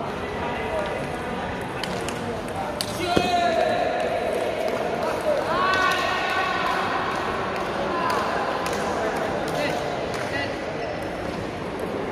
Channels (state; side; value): identical; both; correlation 1.00